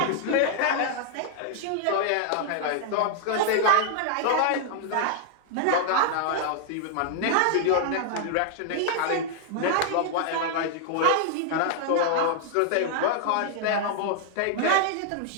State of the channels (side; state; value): both; different; correlation 0.00